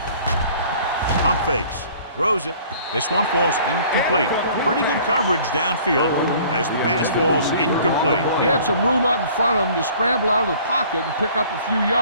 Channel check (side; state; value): both; inverted; correlation -0.52